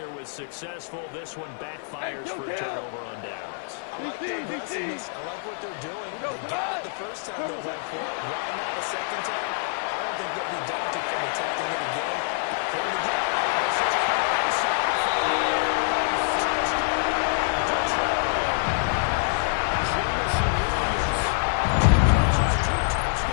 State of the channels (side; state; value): right; silent; 57 dB below the other